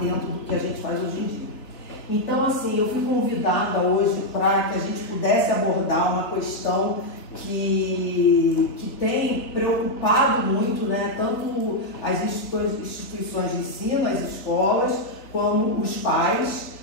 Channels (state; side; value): late; right; 3.5 ms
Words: do que a gente faz hoje em dia. Então, assim, eu fui convidada hoje para que a gente pudesse abordar uma questão que tem preocupado muito, tanto as instituições de ensino, as escolas, como os pais,